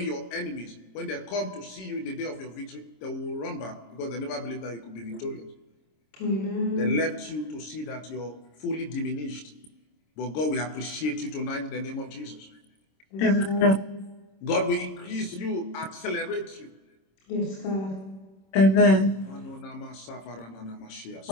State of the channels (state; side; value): late; right; 26 ms